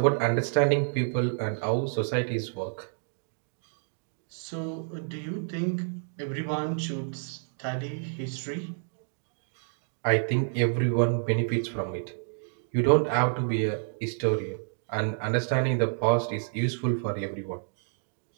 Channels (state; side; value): silent; left; digital silence